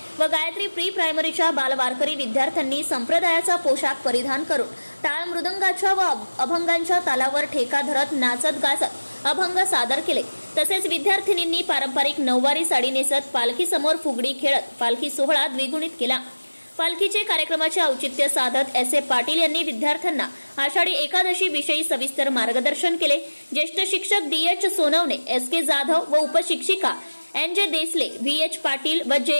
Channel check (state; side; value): inverted; both; correlation -1.00